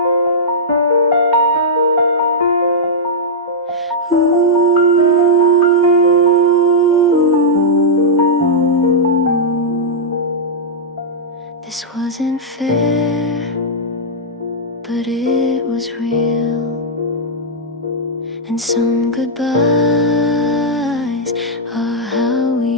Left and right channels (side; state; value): both; normal; correlation -0.09